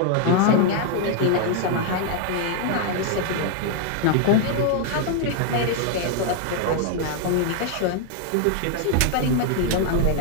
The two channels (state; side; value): different; both; correlation 0.00